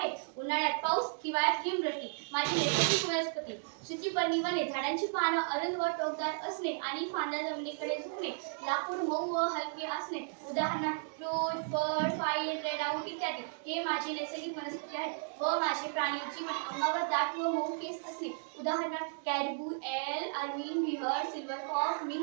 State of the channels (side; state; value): left; silent; digital silence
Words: उन्हाळ्यात पाऊस, हिवाळ्यात हिमवृष्टी। माझी नैसर्गिक वनस्पती सूचीपर्णी वने, झाडांची पानं अरुंद व टोकदार असणे आणि फांद्या जमिनीकडे झुकणे, लाकूड मऊ व हलके असणे, उदाहरणार्थ फ्रूट, फळ, फाईल, रेडआउट इत्यादी हे माझी नैसर्गिक वनस्पती आहेत। व माझे प्राणी जीवन अंगावर दाट व मऊ केस असणे, उदाहरणार्थ कॅरबू, एल, अर्मिन, बिहर, सिल्व्हरफॉक्स,